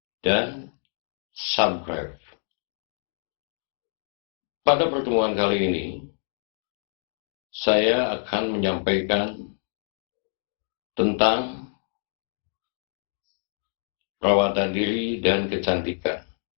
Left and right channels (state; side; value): silent; right; digital silence